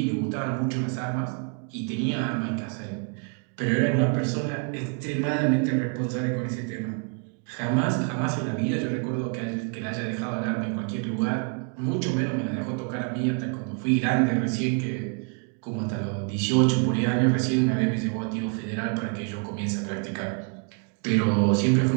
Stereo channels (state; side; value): quieter; left; 39.6 dB